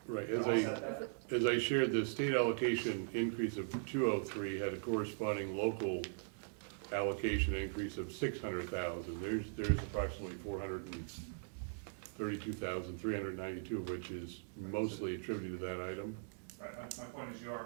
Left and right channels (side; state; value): left; silent; digital silence